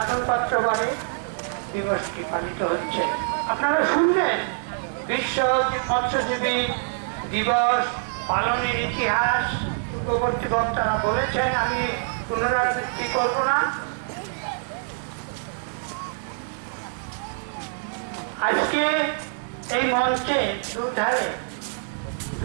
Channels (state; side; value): silent; left; digital silence